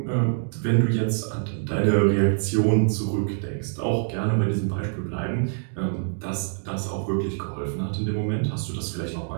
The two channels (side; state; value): left; silent; digital silence